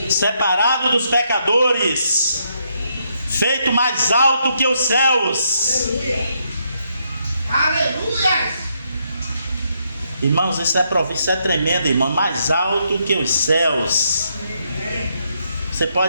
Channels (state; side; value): inverted; both; correlation -0.77